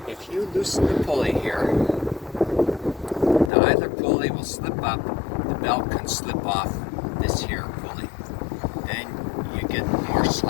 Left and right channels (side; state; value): right; drops out; at 3.5 s